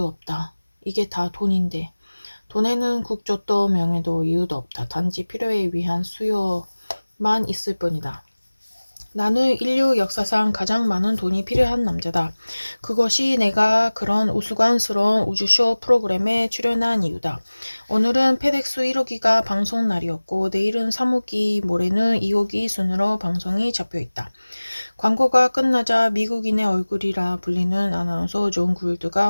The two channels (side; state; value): both; inverted; correlation -1.00